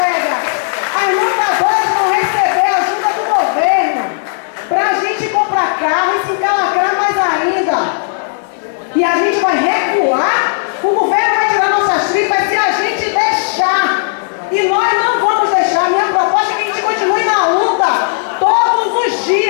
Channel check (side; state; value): right; silent; digital silence